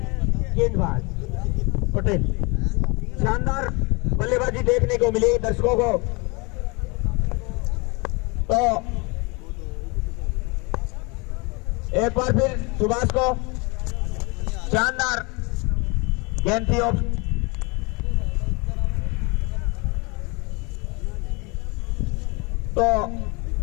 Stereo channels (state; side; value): quieter; right; 28.3 dB